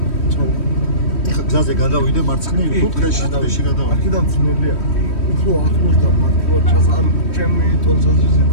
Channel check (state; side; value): late; right; 3.1 ms